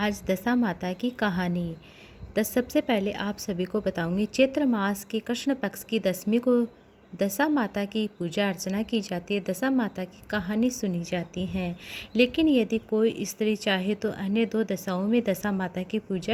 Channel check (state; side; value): identical; both; correlation 1.00